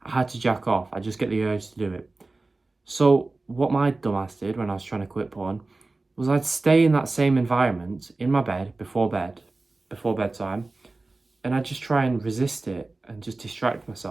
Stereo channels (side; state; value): left; quieter; 3.3 dB